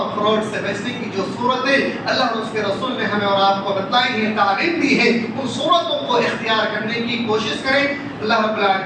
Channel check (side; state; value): both; identical; correlation 1.00